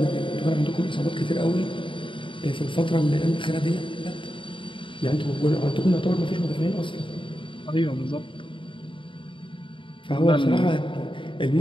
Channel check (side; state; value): right; late; 0.24 ms